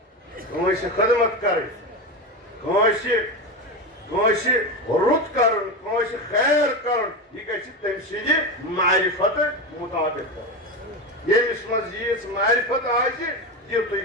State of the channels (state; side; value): normal; both; correlation 0.18